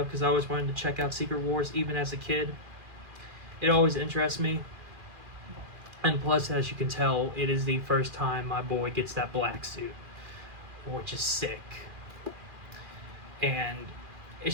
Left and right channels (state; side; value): late; left; 2.4 ms